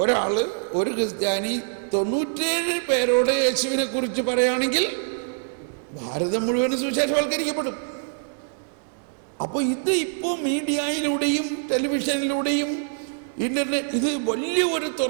ഒരു ക്രിസ്ത്യാനി 97 പേരോട് യേശുവിനെ കുറിച്ച് പറയുകയാണെങ്കിൽ ഭാരതം മുഴുവനും സുവിശേഷവൽക്കരിക്കപ്പെടും. അപ്പോൾ ഇത് ഇപ്പോൾ മീഡിയയിലൂടെയും ടെലിവിഷനിലൂടെയും ഇന്റർനെറ്റ് ഇത് വലിയ ഒരു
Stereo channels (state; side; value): silent; left; digital silence